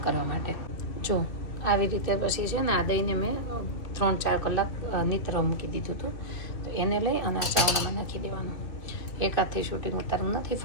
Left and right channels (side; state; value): right; late; 2.6 ms